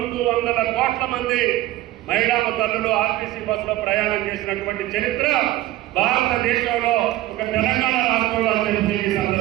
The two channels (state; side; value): quieter; left; 15.9 dB